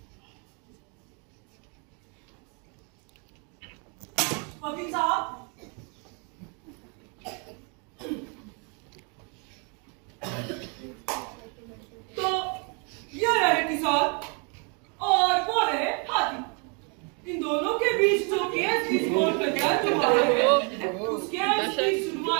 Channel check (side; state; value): left; quieter; 35.4 dB